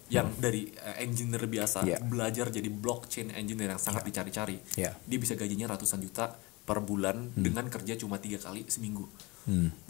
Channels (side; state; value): right; quieter; 24.3 dB